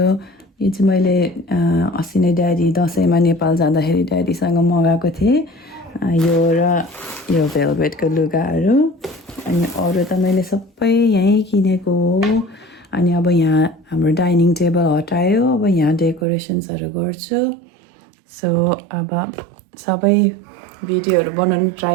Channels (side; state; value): left; drops out; at 16.2 s